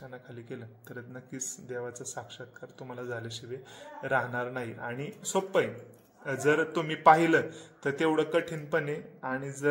केलं तर नक्कीच देवाचा साक्षात्कार तुम्हाला झाल्याशिवाय राहणार नाही. आणि सोपं आहे, जर तुम्ही पाहिलं तर तेवढं कठीणपणे, आणि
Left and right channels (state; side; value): identical; both; correlation 1.00